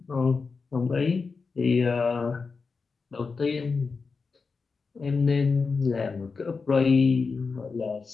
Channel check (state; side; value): quieter; right; 4.7 dB